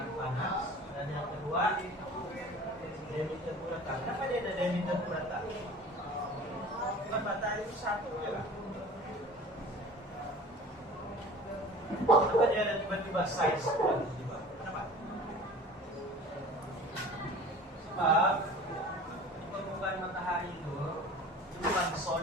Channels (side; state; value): both; normal; correlation 0.42